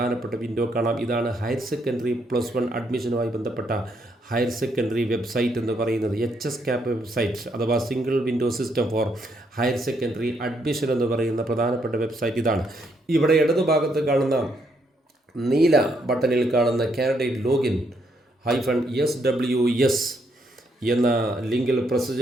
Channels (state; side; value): normal; both; correlation 0.74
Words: വിൻഡോ കാണാം. ഇതാണ് ഹയർ സെക്കൻഡറി +1 അഡ്മിഷനുമായി ബന്ധപ്പെട്ട ഹയർ സെക്കൻഡറി വെബ്സൈറ്റ് എന്ന് പറയുന്നത്. HSCAP വെബ്സൈറ്റ് അഥവാ single window system for higher secondary admission എന്ന് പറയുന്ന പ്രധാനപ്പെട്ട വെബ്സൈറ്റ് ഇതാണ്. ഇവിടെ ഇടതുഭാഗത്ത് കാണുന്ന നീല ബട്ടണിൽ കാണുന്ന കാൻഡിഡേറ്റ് ലോഗിൻ -SWS എന്ന ലിങ്കിൽ പ്രസ്